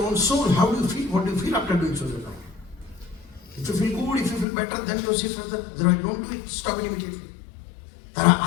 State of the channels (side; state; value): right; drops out; at 4.5 s